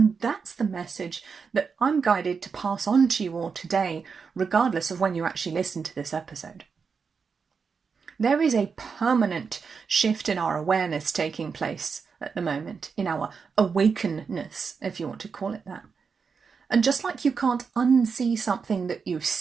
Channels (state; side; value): quieter; left; 5.6 dB